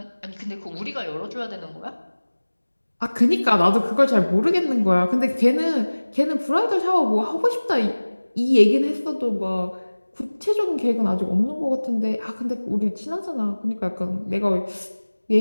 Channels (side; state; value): both; inverted; correlation -1.00